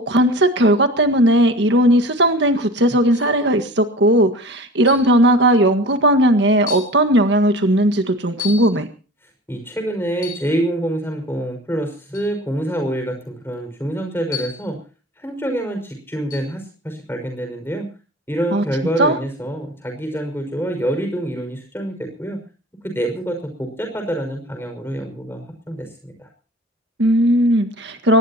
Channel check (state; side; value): normal; both; correlation 0.39